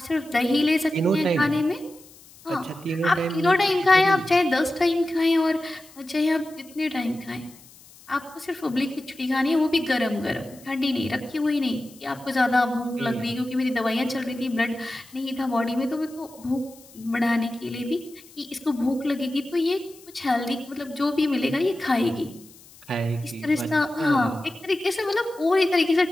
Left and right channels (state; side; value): noise; left; hiss, 23 dB below the sound